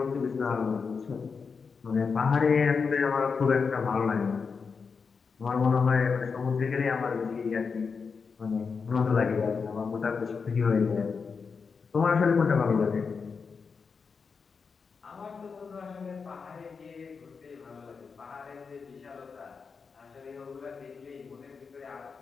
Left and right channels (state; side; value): quieter; right; 5.4 dB